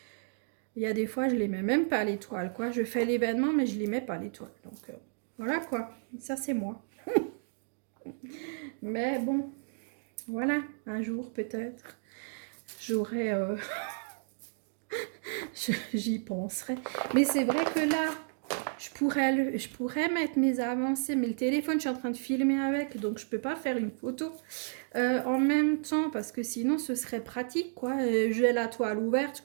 Il y a des fois, je les mets même pas les toiles, quoi. Je fais l'événement, mais je les mets pas les toiles. Donc, voilà, quoi. Ça, c'est moi. Mais bon, voilà, un jour peut-être, j'aurai, j'y penserai. Mais c'est vrai que là, je pourrais mettre mes avancées, mais le téléphone, je suis en train de filmer avec, donc je peux pas faire une photo en même temps, parce que sinon ce serait pratique, quoi. J'ai la toile ouverte,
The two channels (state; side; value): silent; left; digital silence